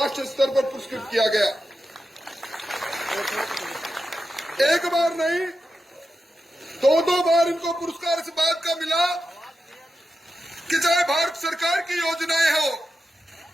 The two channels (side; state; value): both; normal; correlation 0.89